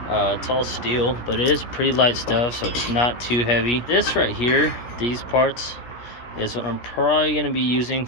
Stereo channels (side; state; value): right; late; 17 ms